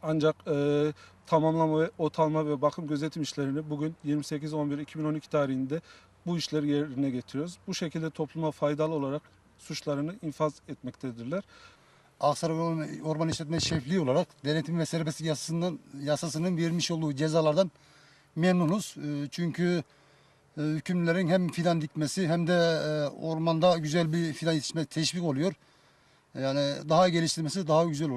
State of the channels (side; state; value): both; identical; correlation 1.00